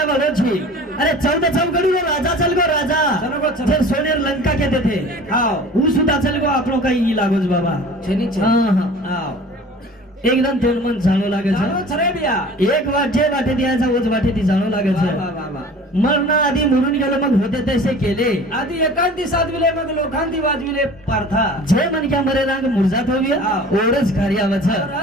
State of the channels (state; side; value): normal; both; correlation 0.43